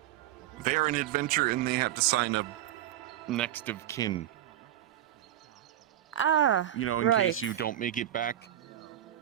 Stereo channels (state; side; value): quieter; left; 12.2 dB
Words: They're an adventure and they have to sign a next of kin. Ah, You know, in right. case you don't make it back,